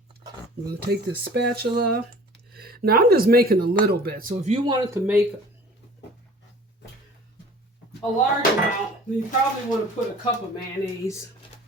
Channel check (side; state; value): both; normal; correlation 0.46